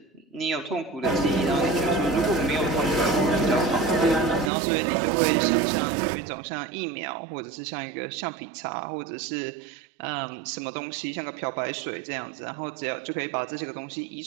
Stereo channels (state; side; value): drops out; left; at 4.5 s